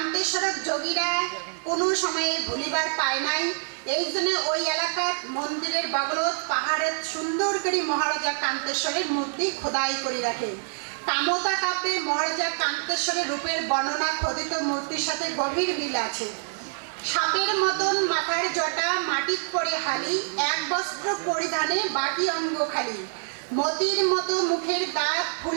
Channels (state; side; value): silent; left; 61 dB below the other